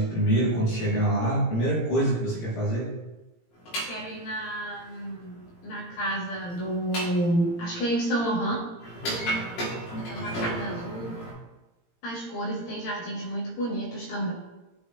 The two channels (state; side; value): late; right; 17 ms